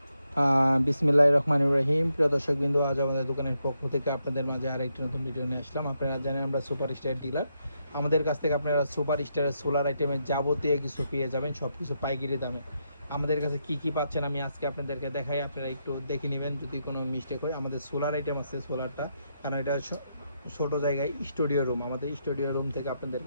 বিসমিল্লাহির রহমানির রহিম। প্রিয় দর্শকবৃন্দ, আজ আমাদের দোকানের পক্ষ থেকে আপনাদের মাঝে আরেকটি নতুন ভিডিও নিয়ে আসলাম। আপনারা জানেন আমরা সুপার স্টার ডিলার। আমাদের কাছ থেকে আপনারা সুপার স্টারের সোলার আইটেমের যাবতীয় কিছু পেয়ে যাবেন, সব কিছু পাইকারি দামে। আমাদের কাছে কি কি পাচ্ছেন আমি আজকে আপনাদেরকে দেখাই, আপনারা একটু দেখে নেবেন। যদি কোনো মিস্টেক হয়, আমাদের সোলার আইটেম আছে সোলারটা, কারণ এটা ছোট জায়গায় স্টুডিও রুম, আমাদের স্টুডিও রুম থেকে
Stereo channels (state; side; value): inverted; both; correlation -0.81